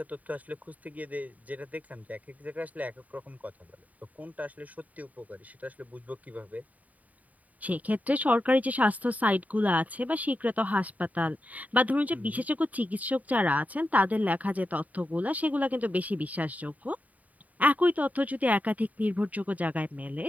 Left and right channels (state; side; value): late; left; 0.073 ms